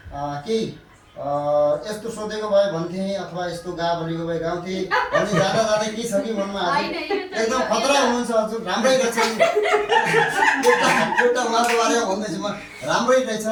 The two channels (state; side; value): identical; both; correlation 1.00